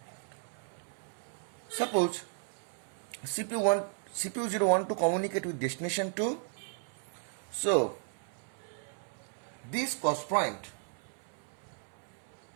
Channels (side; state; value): left; silent; 54 dB below the other